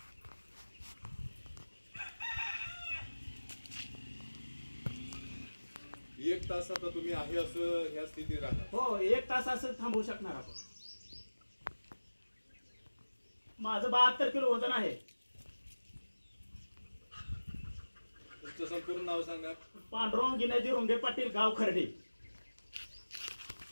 एक तास आता तुम्ही आहे असं ह्या स्थितीत राहणार? हो, 1 तास असं थांबवू शकणार आपण. माझं 72 किलो वजन आहे. तुमचं संपूर्ण नाव सांगा. पांडुरंग गिनाजी रुंगे पाटील, गाव खर्डे,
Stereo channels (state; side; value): inverted; both; correlation -1.00